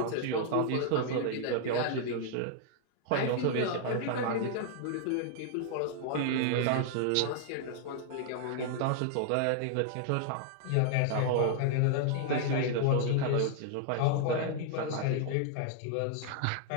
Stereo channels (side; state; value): both; different; correlation -0.01